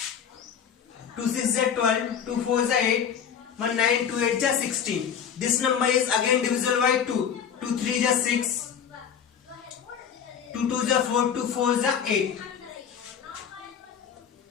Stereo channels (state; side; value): quieter; right; 8.0 dB